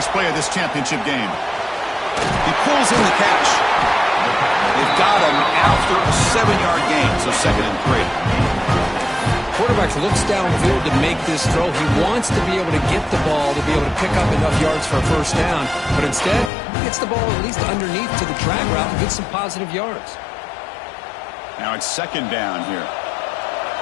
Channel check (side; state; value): right; drops out; at 16.5 s